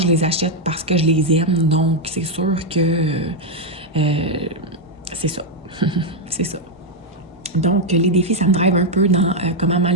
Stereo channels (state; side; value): normal; both; correlation 0.01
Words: je les achète parce que je les aime, donc c'est sûr que c'est ça. C'est ça. Donc, les défis, ça me drive un peu dans comment